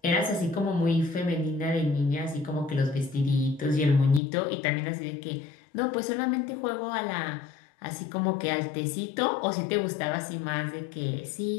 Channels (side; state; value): right; drops out; at 4.2 s